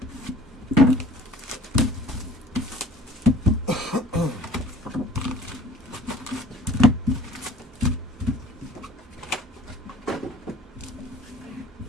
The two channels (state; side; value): normal; both; correlation 0.51